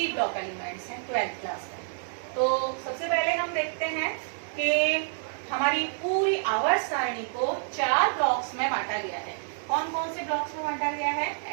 ब्लॉक एलिमेंट्स हैं 12th क्लास में। तो सबसे पहले हम देखते हैं कि हमारी पूरी आवर्त सारणी को 4 ब्लॉक्स में बांटा गया है। कौन कौन से ब्लॉक्स में बांटा गया है?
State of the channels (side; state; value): left; silent; digital silence